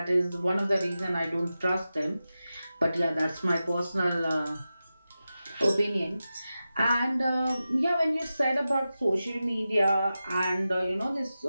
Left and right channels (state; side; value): inverted; both; correlation -0.93